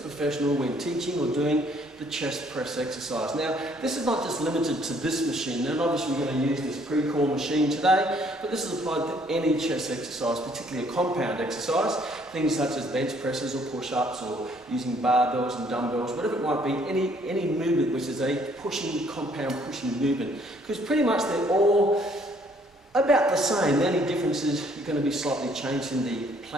when teaching or doing the chest press exercise. Now, this is not just limited to this machine. Now, obviously we're going to use this pre-core machine today, but this is applied to any chest exercise, particularly a compound exercise. Things such as bench presses or push-ups or using barbells and dumbbells, whatever it might be, any movement which is a compound pushing movement. Because pretty much they're all about the same. The only difference is you're going to be slightly changed in the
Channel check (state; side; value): normal; both; correlation 0.63